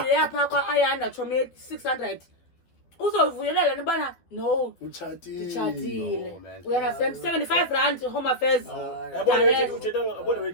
yapha kwa ayanda chome 600 uzovuyelela nibana no uchatile we understand 75 rand home affairs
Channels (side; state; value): right; late; 12 ms